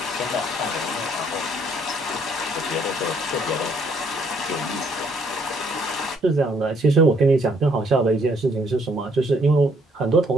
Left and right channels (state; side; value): normal; both; correlation 0.66